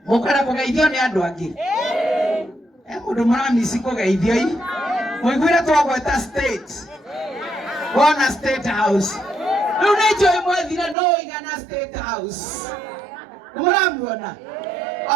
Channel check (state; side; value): drops out; left; at 11.0 s